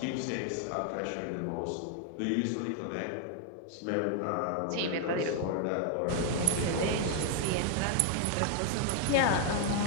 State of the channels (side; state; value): both; different; correlation 0.00